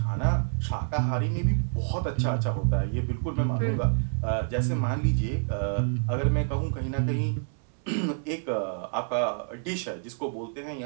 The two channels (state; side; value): silent; left; 59 dB below the other